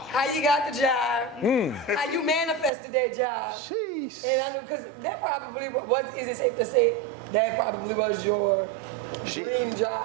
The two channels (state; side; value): drops out; left; at 2.7 s